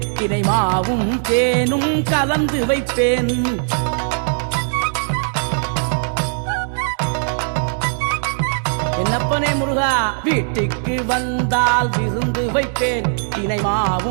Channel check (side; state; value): left; silent; digital silence